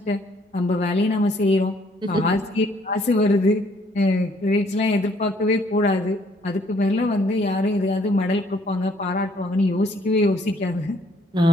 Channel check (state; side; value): normal; both; correlation 0.64